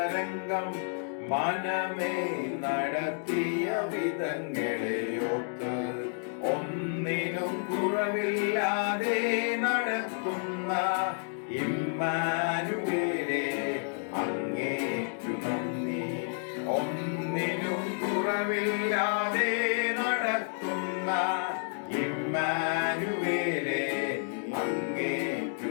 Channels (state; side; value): silent; right; 58 dB below the other